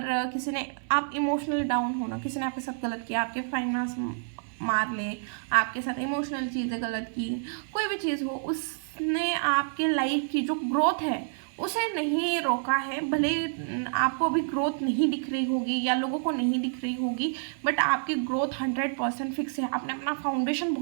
किसी ने आप इमोशनली डाउन हो ना, किसी ने आपके साथ गलत किया, आपके फाइनेंस मार ले, आपके साथ इमोशनल चीज़ें गलत की, कोई भी चीज़ हो, उसने आपके लाइफ की जो ग्रोथ है उसे नहीं रोका है। भले आपको अभी ग्रोथ नहीं दिख रही होगी या लोगों को नहीं दिख रही होगी बट आपकी ग्रोथ 100% फिक्स है। आपने अपना फाउंडेशन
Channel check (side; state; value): left; silent; 59 dB below the other